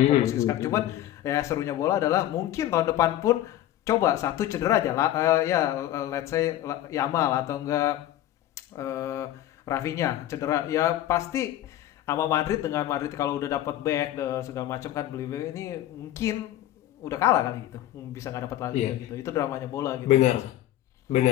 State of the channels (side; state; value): right; quieter; 13.2 dB